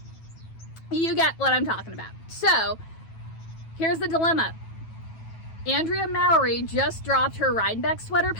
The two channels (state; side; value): late; right; 9.2 ms